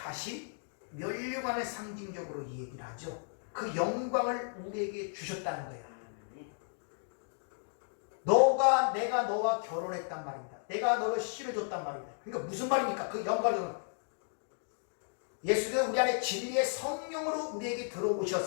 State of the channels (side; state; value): right; silent; digital silence